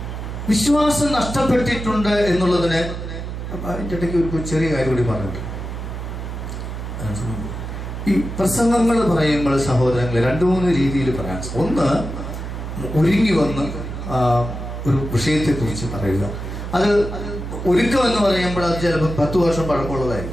വിശ്വാസം നഷ്ടപ്പെട്ടിട്ടുണ്ട് എന്നുള്ളതിന് അതിൻ്റെ ഇടയ്ക്ക് ഒരു ചെറിയ കാര്യം കൂടി പറഞ്ഞിട്ടുണ്ട്. ഈ പ്രസംഗങ്ങൾ പറയുമ്പോൾ സഹോദരങ്ങളെ 2-3 രീതിയിൽ പറയാൻ. ഒന്ന്, ഒരുങ്ങി വന്ന് ഒരു വിഷയത്തെക്കുറിച്ച് പറയുക. അത് ഒരുക്കം എന്ന് പറയുമ്പോൾ അത് ചിലപ്പോൾ 10 വർഷം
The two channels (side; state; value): right; noise; hum, 7 dB below the sound